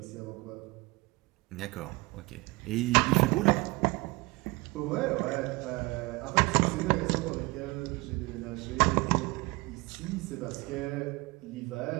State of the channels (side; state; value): left; quieter; 24.0 dB